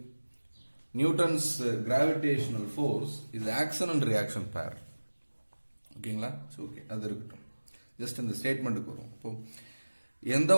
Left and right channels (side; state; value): both; inverted; correlation -1.00